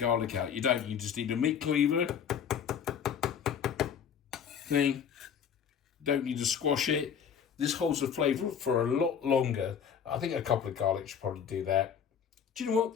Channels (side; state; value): right; quieter; 7.8 dB